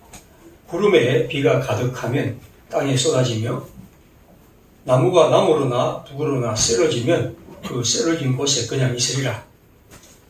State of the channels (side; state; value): both; identical; correlation 1.00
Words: 구름에 비가 가득하면 땅에 쏟아지며 나무가 나무로나 북으로나 쓰러지면 그 쓰러진 곳에 그냥 있으리라.